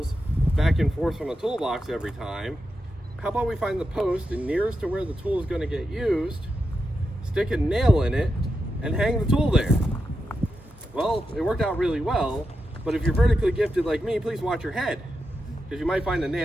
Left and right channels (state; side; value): normal; both; correlation 0.87